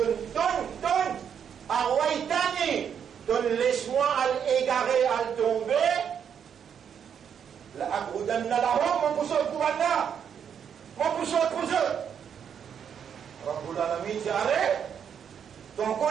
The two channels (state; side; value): quieter; left; 7.9 dB